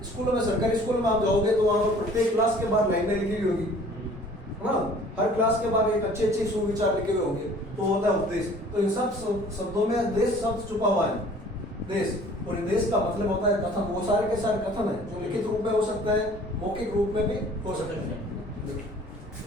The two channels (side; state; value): both; normal; correlation 0.51